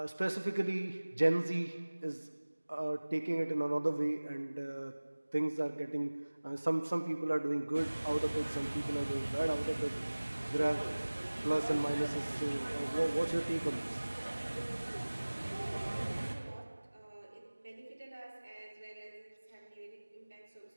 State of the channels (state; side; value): inverted; both; correlation -1.00